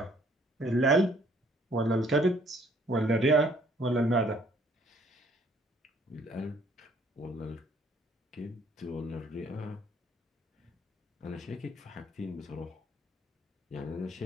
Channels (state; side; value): normal; both; correlation 0.62